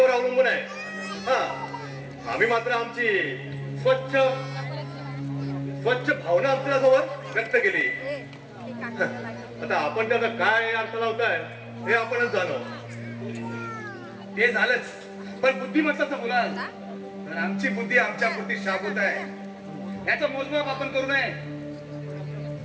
अवलंबून आहे. हा, आम्ही मात्र आमची स्वच्छ भावना आपल्याजवळ व्यक्त केली. आता आपण त्याचा काय अर्थ लावताय हे आपणच जाणो. ते झालंच, पण बुद्धिमत्ताचं बोलाल तर आमची बुद्धी आमच्या पुरती शाबूत आहे. याचं मोजमाप आपण करू नये.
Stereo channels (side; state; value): both; identical; correlation 1.00